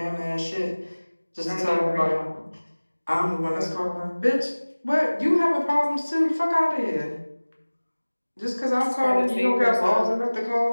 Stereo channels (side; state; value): both; inverted; correlation -1.00